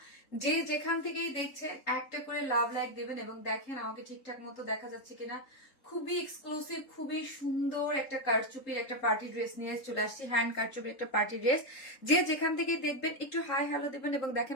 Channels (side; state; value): right; late; 3.8 ms